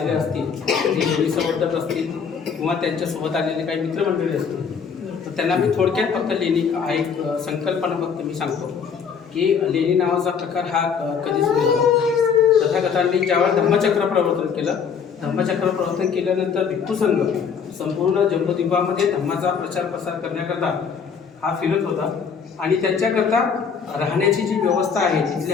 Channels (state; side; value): quieter; right; 6.5 dB